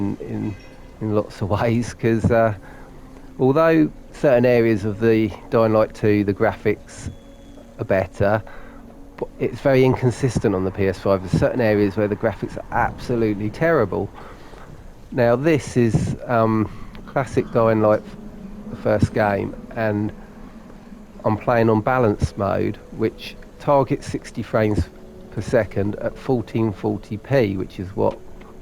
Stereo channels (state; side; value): identical; both; correlation 1.00